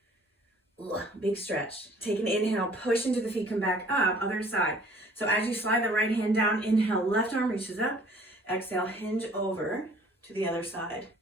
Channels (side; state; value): both; normal; correlation 0.55